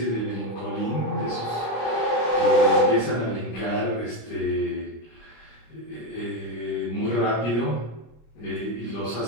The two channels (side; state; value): right; late; 25 ms